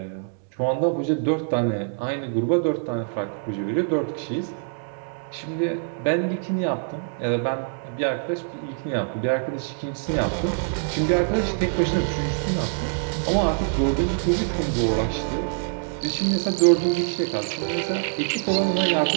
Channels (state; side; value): silent; left; digital silence